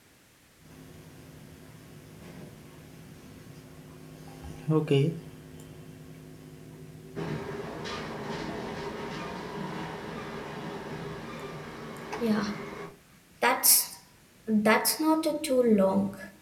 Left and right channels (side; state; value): both; identical; correlation 1.00